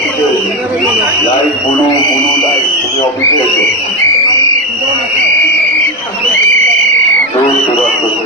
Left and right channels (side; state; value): both; normal; correlation 0.13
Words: লাইভ বলু বলু লাইভ, তুমি অফিসে এসো।